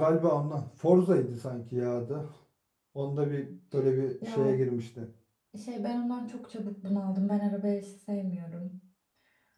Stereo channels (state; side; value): identical; both; correlation 1.00